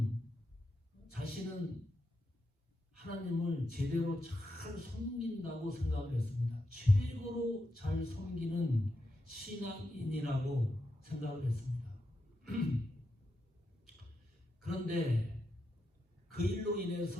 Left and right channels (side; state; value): both; normal; correlation 0.85